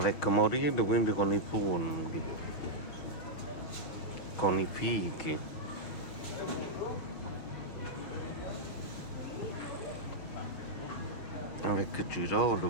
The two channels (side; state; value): right; late; 6.3 ms